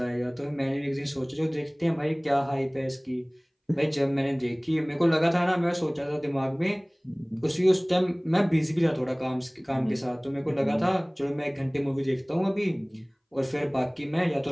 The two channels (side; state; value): both; identical; correlation 1.00